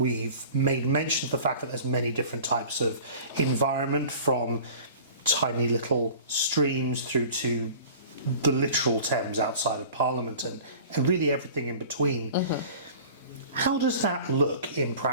made mention of the fact that there's many different types of environment, from tiny little streams through to the literal Thames outside of Parliament, and really everything in between. How does that look in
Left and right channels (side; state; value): both; inverted; correlation -0.43